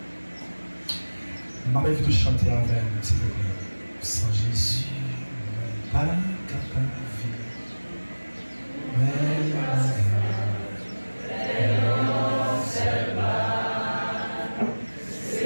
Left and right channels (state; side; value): inverted; both; correlation -1.00